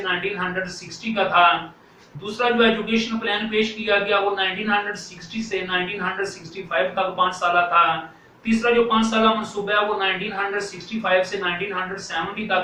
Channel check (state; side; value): identical; both; correlation 1.00